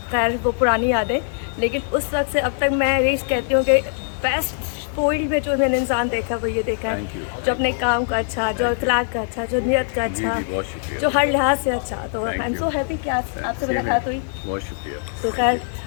खैर वो पुरानी यादें, लेकिन उस वक्त से अब तक मैं यही कहती हूँ कि बेस्ट फील्ड में जो मैंने इंसान देखा वो ये देखा थैंक यू। है जो अपने काम का अच्छा, जो अखलाक का अच्छा, जो नियत का जी अच्छा, जी, बहुत शुक्रिया। जो हर लिहाज से अच्छा। तो I thank am you. So happy कि आज आपसे मुलाकात हुई। बहुत शुक्रिया। तो खैर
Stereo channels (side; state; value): right; silent; digital silence